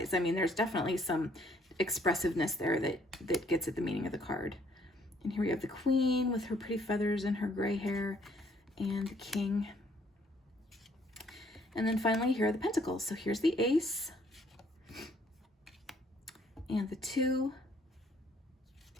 I mean, there's definitely some expressiveness there that gets at the meaning of the card. And here we have the Queen with her pretty feathers and her gray hair, and the King. And then finally, here are the Pentacles. So here's the Ace and the 2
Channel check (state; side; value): normal; both; correlation 0.64